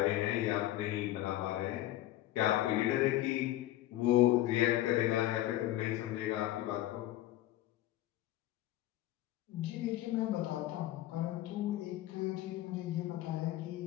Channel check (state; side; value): quieter; right; 14.7 dB